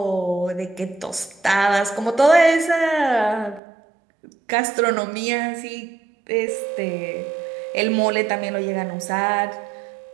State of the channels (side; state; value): left; drops out; at 3.6 s